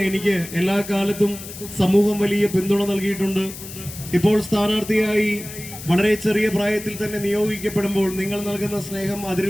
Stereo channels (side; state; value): left; noise; hiss, 13 dB below the sound